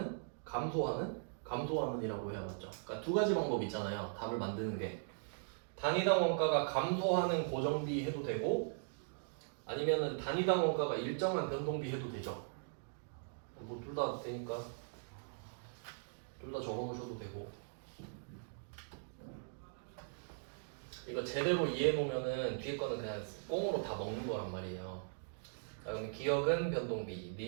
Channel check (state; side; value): silent; left; digital silence